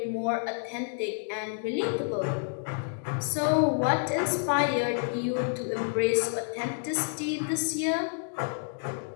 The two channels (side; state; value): right; silent; 59 dB below the other